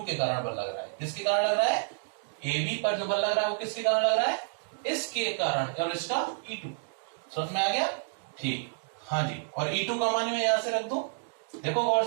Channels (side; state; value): left; silent; digital silence